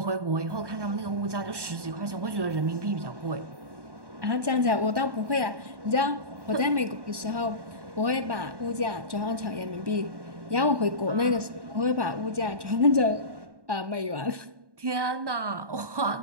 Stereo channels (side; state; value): left; late; 1.1 ms